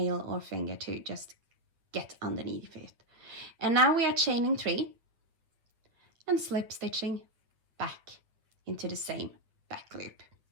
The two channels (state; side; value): late; left; 8.9 ms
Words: or finger to just get underneath it. And now we are chaining 3 and slip stitching back into the same back loop.